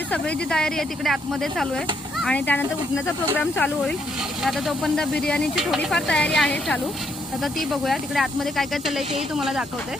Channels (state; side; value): normal; both; correlation 0.74